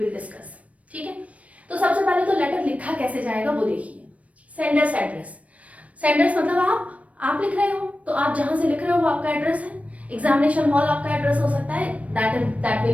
डिस्कस. ठीक है. तो सबसे पहले तो लेटर लिखा कैसे जाएगा वो देखिए. Sender's address. सेंडर्स मतलब आप लिख रहे हो तो आप जहां से लिख रहे हो वो आपका एड्रेस है. एग्जामिनेशन हॉल आपका एड्रेस हो सकता है, that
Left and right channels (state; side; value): late; left; 0.066 ms